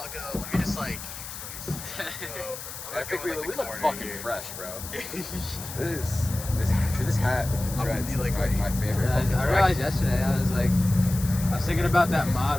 go. Let me just like. I think we look fucking fresh, bro. this hat with the dreads is my favorite. I realized yesterday, I was thinking about that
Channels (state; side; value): noise; left; hiss, 10 dB below the sound